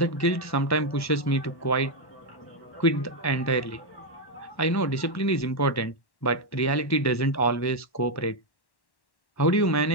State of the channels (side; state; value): right; late; 1.1 ms